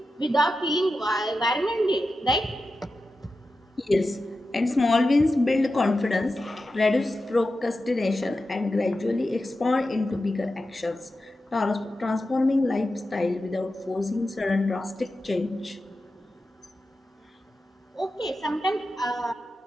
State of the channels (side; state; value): both; normal; correlation 0.91